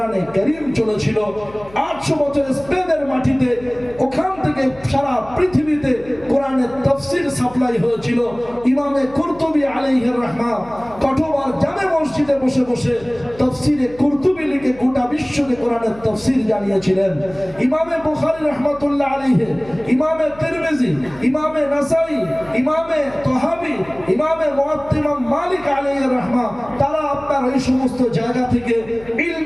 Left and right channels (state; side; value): noise; left; hum, 22 dB below the sound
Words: কারীম চলেছিল। 800 বছর স্পেনের মাটিতে, ওখান থেকে সারা পৃথিবীতে কোরআনের তাফসীর সাপ্লাই হয়েছিল। ইমামে কুরতুবী আলাইহির রাহমা কঠোবার জামে মসজিদে বসে বসে তাফসীরে কুরতুবী লিখে গোটা বিশ্বকে কোরআনের তাফসীর জানিয়েছিলেন। ইমামে বুখারী রাহমাতুল্লাহ আলাইহি, ইমামে তিরমিজি, ইমামে নাসাই, ইমামে তাহাবি, ইমামে মুয়াত্তা ইমাম মালিক আলাইহির রাহমা, তারা আপনার এই সমস্ত জায়গা থেকে